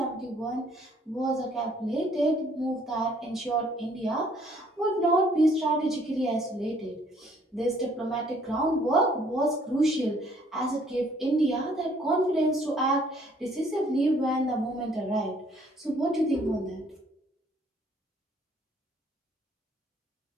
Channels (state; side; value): normal; both; correlation 0.62